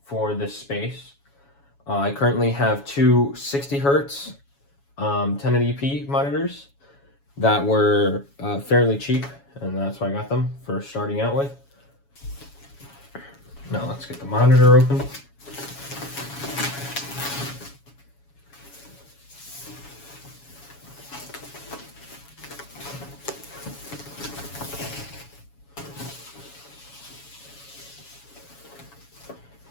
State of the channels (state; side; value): late; right; 7.2 ms